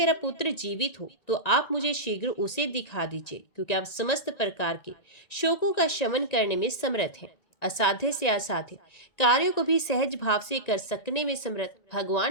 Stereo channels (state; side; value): late; right; 1.9 ms